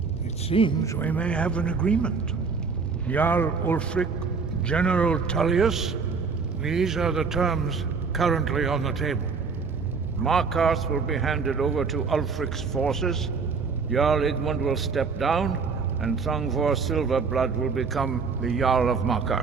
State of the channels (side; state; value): left; quieter; 5.1 dB